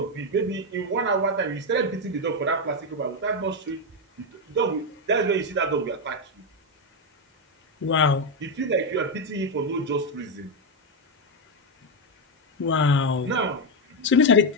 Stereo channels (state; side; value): normal; both; correlation 0.06